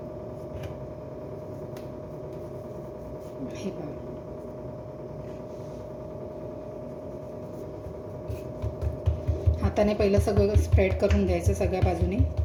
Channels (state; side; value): identical; both; correlation 1.00